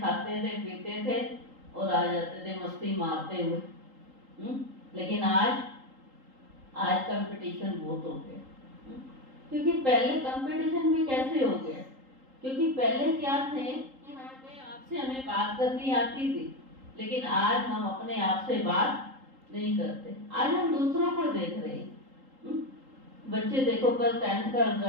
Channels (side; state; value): left; late; 3.8 ms